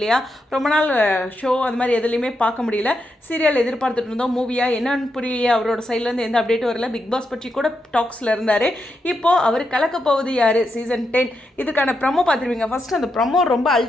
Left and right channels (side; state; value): both; normal; correlation 0.84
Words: ரொம்ப நாள் ஷோ அது மாதிரி எதுலேயுமே பார்க்க முடியல. சீரியல் எதிர்பார்த்துட்டு இருந்தோம், மூவியா என்னன்னு புரியலையே, அவரோட சைட்லேருந்து எந்த அப்டேட்டும் வரல. பிக் பாஸ் பற்றி கூட டாக்ஸில் இருந்தார். இப்போது அவர் கலக்க போவது யார் சீசன் 10 இதுக்கான ப்ரமோ பார்த்துருவீங்க. ஃபஸ்ட்டு அந்த ப்ரமோ ரொம்ப